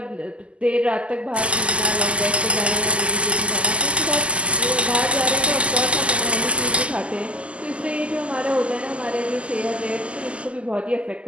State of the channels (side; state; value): left; late; 0.056 ms